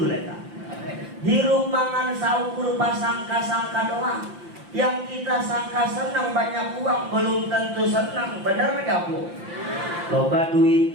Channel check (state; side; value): late; left; 5.8 ms